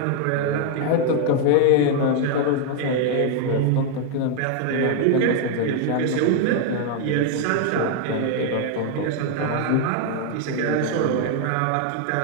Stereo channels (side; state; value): both; different; correlation 0.00